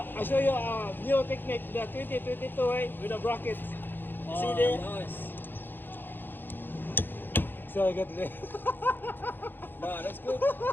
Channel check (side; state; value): right; late; 0.096 ms